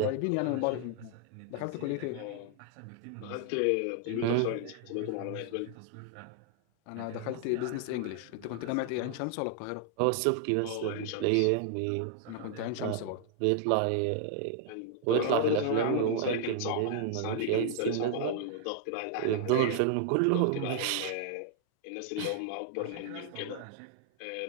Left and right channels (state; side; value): different; both; correlation 0.00